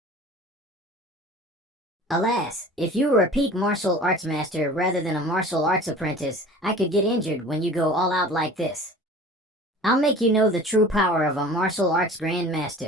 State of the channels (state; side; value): normal; both; correlation 0.42